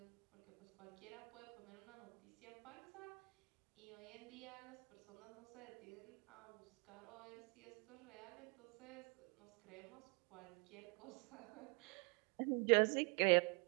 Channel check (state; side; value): quieter; left; 34.2 dB